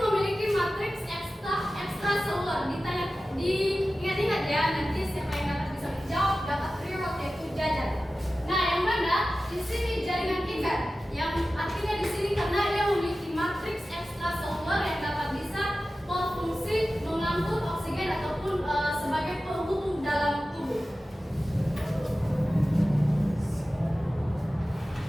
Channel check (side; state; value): both; normal; correlation 0.95